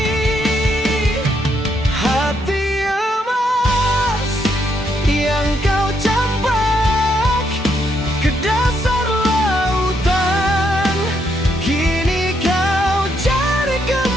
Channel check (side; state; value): both; normal; correlation 0.76